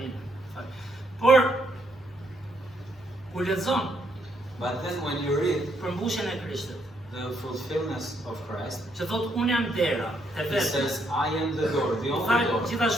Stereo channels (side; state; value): both; normal; correlation 0.74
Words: Por kur lexon But then when you read përmbushjen e Krishtit, the fulfillment of Christ, që thotë unë jam dera e it vetë. says, I am the door, the Tha only door.